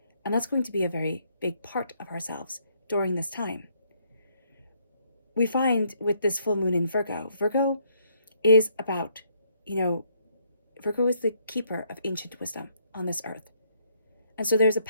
And that's going to be a very big part of ourselves during this time. We find with this full moon in Virgo is about, Virgo is the keeper of ancient wisdom on this earth. And so there's a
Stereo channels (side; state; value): both; inverted; correlation -0.70